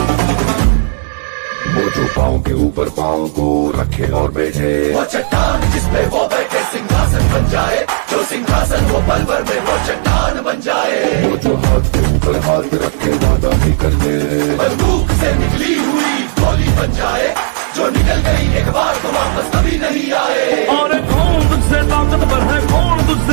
ऊपर पाँव को रखे और बैठे, वो चट्टान जिसपे वो बैठे सिंहासन बन जाए, जो सिंहासन वो पल भर में वो चट्टान बन जाए। वो जो हाथ के ऊपर हाथ रखे वादा ही कर दे, बंदूक से निकली हुई गोली बन जाए, जो निकल गई एक बार तो वापस कभी नहीं आए। और कौन तुझसे ताकतवर है, कौन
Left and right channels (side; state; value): left; silent; digital silence